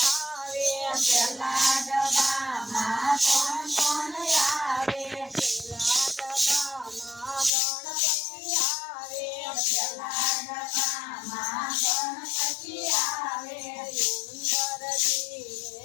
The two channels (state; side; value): drops out; right; at 7.5 s